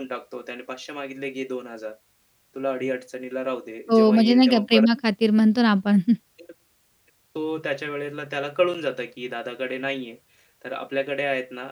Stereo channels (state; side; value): identical; both; correlation 1.00